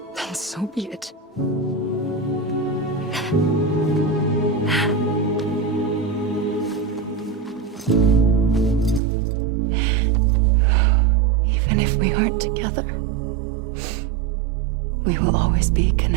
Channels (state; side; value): drops out; left; at 9.0 s